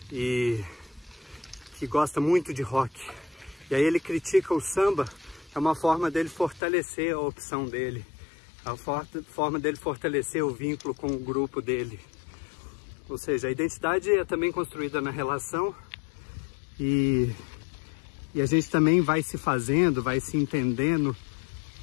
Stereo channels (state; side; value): drops out; right; at 6.6 s